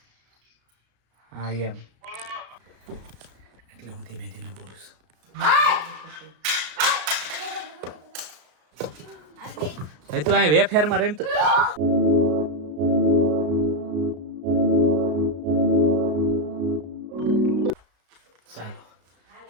હા એમ એટલે હું ધીમે ધીમે બોલું છું. તું અહીં વેફેરમાં રહીમ તો ચાલો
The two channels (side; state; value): left; late; 34 ms